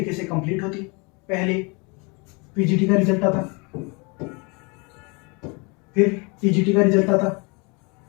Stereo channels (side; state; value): right; quieter; 30.4 dB